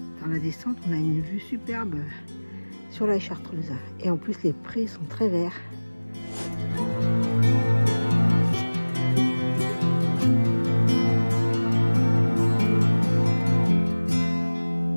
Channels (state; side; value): inverted; both; correlation -1.00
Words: Dans la descente, on a une vue superbe sur la Chartreuse. Et en plus, les prés sont très verts.